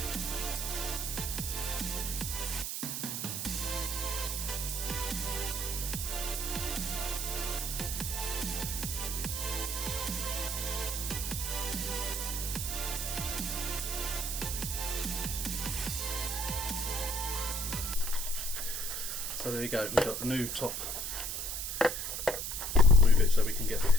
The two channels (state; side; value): noise; right; hiss, 3 dB below the sound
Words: So there you go, we've got the new top. Move it so we can get the